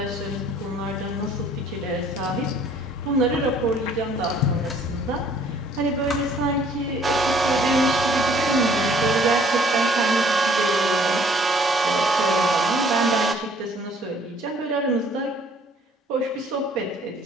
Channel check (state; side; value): normal; both; correlation 0.58